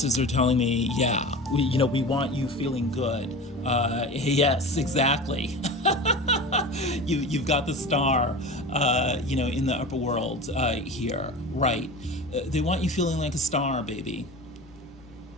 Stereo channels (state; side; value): normal; both; correlation 0.32